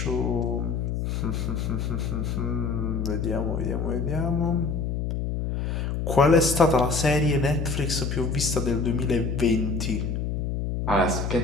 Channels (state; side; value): noise; left; hum, 1 dB below the sound